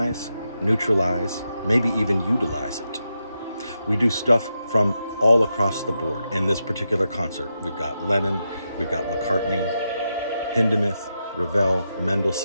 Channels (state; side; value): inverted; both; correlation -0.86